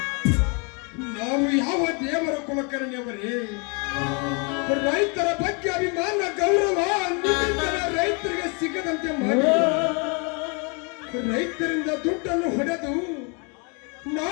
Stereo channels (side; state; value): right; quieter; 34.0 dB